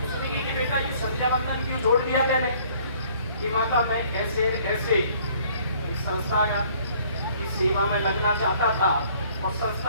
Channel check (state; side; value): inverted; both; correlation -0.59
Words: उसने कहा कि बेटा ये संध्या बंधन क्यों छोड़ दिया मैंने? कि माता मैं ऐसे ऐसे एक संस्था की सेवा में लगना चाहता था और